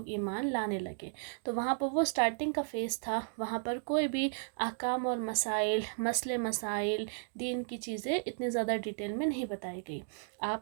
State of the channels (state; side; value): silent; left; digital silence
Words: ایمان لانے لگے۔ تو وہاں پر وہ سٹارٹنگ کا فیز تھا، وہاں پر کوئی بھی احکام اور مسائل دین کی چیزیں اتنی زیادہ ڈیٹیل میں نہیں بتائی گئی۔